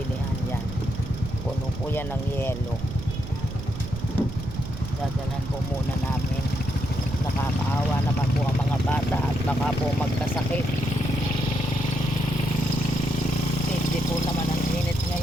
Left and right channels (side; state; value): right; noise; rumble, 8 dB below the sound